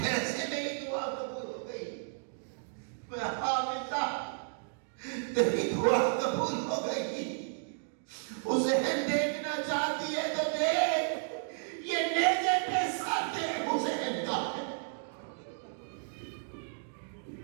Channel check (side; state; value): left; silent; digital silence